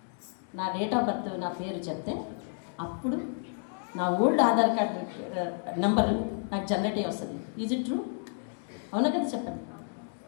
నా డేట్ ఆఫ్ బర్త్, నా పేరు చెప్తే అప్పుడు నా ఓల్డ్ ఆధార్ కార్డు నెంబర్ నాకు జనరేట్ అయ్యి వస్తుంది. Is it true? అవునా కదా? చెప్పండి.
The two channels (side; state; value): right; silent; 57 dB below the other